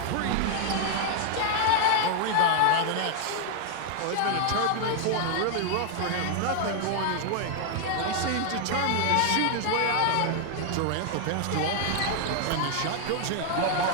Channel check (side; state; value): both; different; correlation 0.00